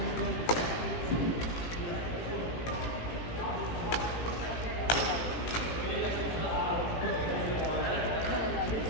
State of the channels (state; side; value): late; right; 17 ms